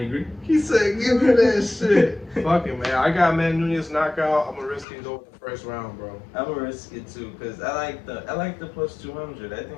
agree. He said, "Give me that shit." Fuck it, man. I got Man Nunez knockout. I'm gonna risk it and go with the first round, bro. I'm gonna risk it too, cause I like the plus 200. I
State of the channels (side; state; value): right; drops out; at 4.9 s